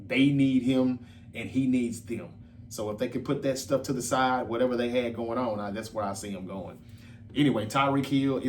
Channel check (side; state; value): both; identical; correlation 1.00